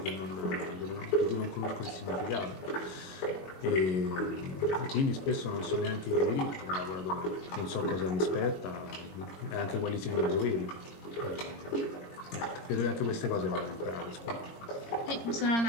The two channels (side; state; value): right; late; 22 ms